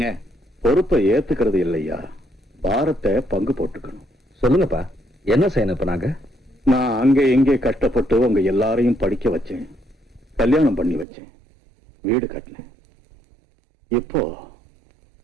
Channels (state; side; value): drops out; left; at 11.1 s